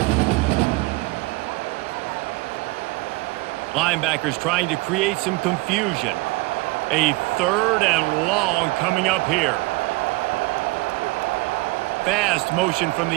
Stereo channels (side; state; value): left; quieter; 23.8 dB